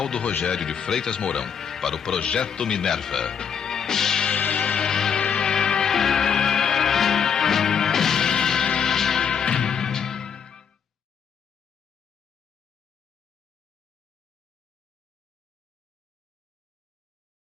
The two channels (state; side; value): quieter; right; 7.3 dB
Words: Rogério de Freitas Mourão para o Projeto Minerva.